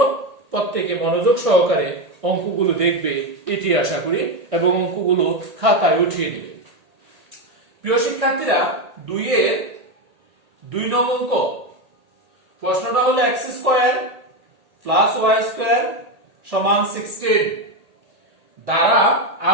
প্রত্যেকে মনোযোগ সহকারে অঙ্কগুলো দেখবে এটি আশা করি এবং অঙ্কগুলো খাতায় উঠিয়ে দিবে। প্রিয় শিক্ষার্থীরা, 2 এর 2 নং অঙ্ক প্রশ্নটা হলো x² + y² = 16 দ্বারা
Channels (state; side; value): late; left; 1.8 ms